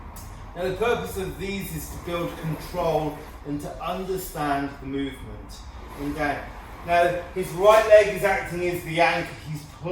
Now the purpose of these is to build control and to understand the movement. And down. Now his right leg is acting as the anchor. He's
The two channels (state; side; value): identical; both; correlation 1.00